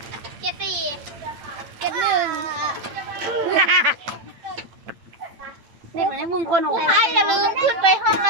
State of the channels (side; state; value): left; late; 8.8 ms